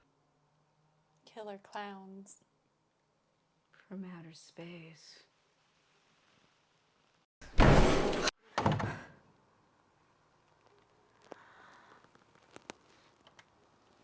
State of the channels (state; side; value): identical; both; correlation 1.00